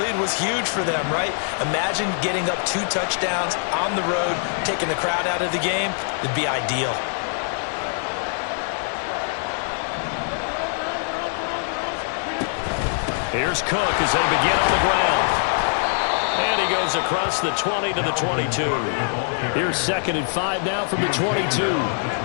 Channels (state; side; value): silent; right; 55 dB below the other